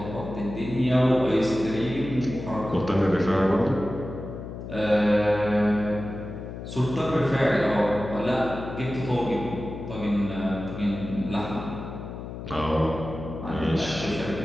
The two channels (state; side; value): noise; left; hum, 9 dB below the sound